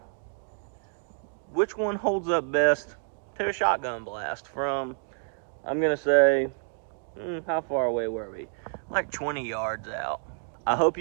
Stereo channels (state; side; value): silent; left; digital silence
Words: which one holds up best to a shotgun blast from I'm gonna say, how far away were we? Like 20 yards out. I hope